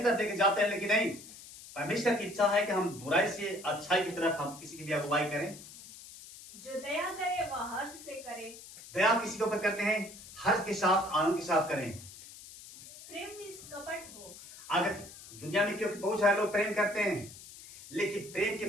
तरफ लेके जाते हैं, लेकिन नहीं, परमेश्वर की इच्छा है कि हम बुराई से अच्छाई की तरफ हम किसी की भी अगुवाई करें। जो दया करे वह हर्ष से करे। दया किसी के ऊपर करते हैं, हर्ष के साथ, आनंद के साथ करें। प्रेम निष्कपट हो। अगर दुनिया में क्योंकि बहुत सारे लोग प्रेम करते हैं, लेकिन प्रेम के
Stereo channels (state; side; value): noise; left; hiss, 16 dB below the sound